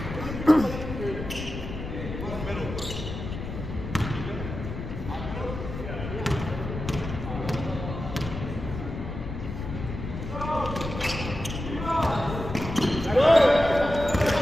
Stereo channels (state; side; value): noise; left; rumble, 7 dB below the sound